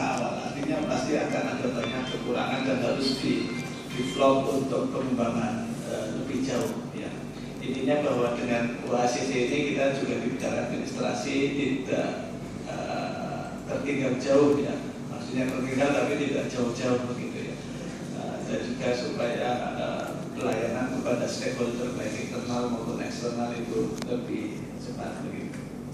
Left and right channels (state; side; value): identical; both; correlation 1.00